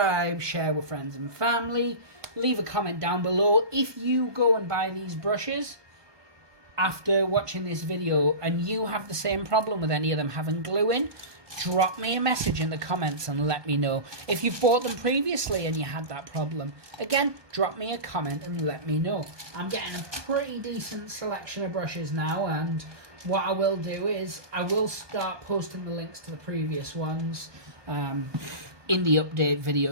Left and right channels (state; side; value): late; left; 1.2 ms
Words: share with friends and family. Leave a comment down below if you go and buy these brushes after watching this video and you have the same problem with any of them having glue in. Drop me a message in the comments and let me know. If you've bought them previously and you had that problem, again, drop me a comment and let me know. I'm getting a pretty decent selection of brushes now, and what I will do is I will start posting the links to the previous ones in the update